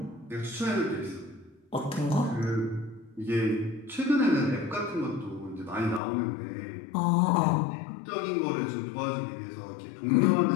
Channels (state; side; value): drops out; right; at 6.0 s